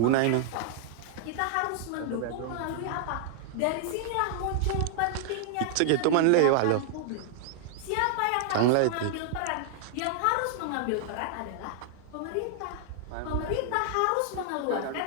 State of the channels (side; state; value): both; different; correlation -0.01